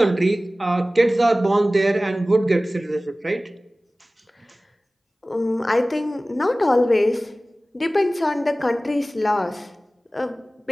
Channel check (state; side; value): normal; both; correlation 0.97